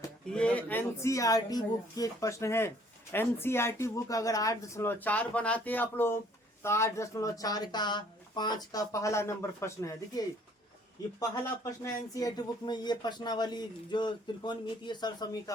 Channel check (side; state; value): both; normal; correlation 0.59